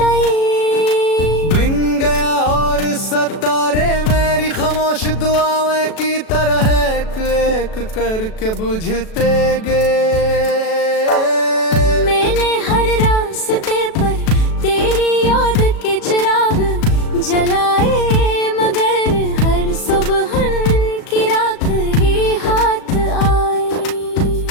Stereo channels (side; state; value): right; late; 37 ms